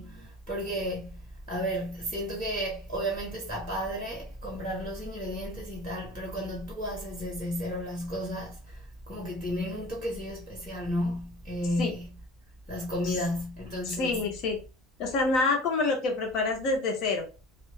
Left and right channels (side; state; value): both; normal; correlation 0.39